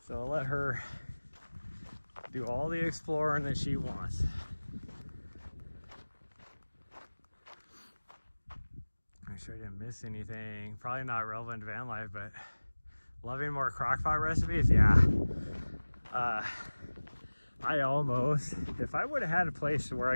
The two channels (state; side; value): inverted; both; correlation -1.00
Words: So I'll let her do all the exploring that she wants. Make sure I didn't miss anything. Probably not relevant to van life, but loving more crockpot recipes. Yeah. I almost, if I would have had a place where